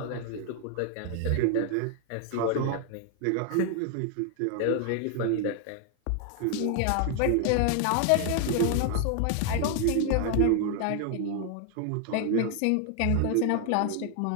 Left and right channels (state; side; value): different; both; correlation 0.00